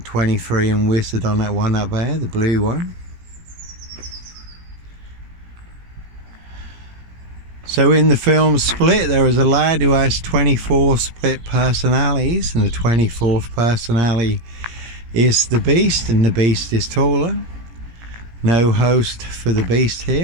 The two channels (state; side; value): late; left; 17 ms